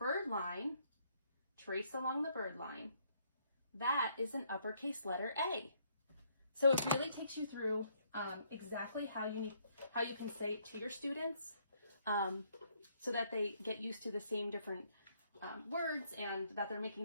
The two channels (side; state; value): both; inverted; correlation -0.69